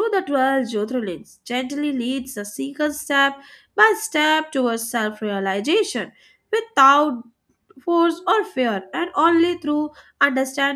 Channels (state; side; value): identical; both; correlation 1.00